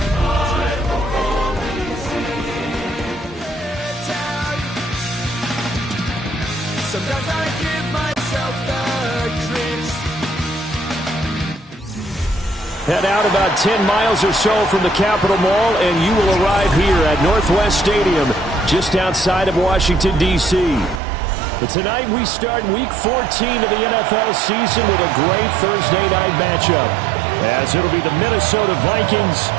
I only see town. Sometimes I give myself the creeps. Head out about 10 miles or so from the Capitol Mall, and you will arrive here at Northwest Stadium, just outside of Washington, D.C. But tonight we start Week 14 of the NFL season with a great Thursday night matchup, as it'll be the Minnesota Vikings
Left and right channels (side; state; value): left; drops out; at 21.0 s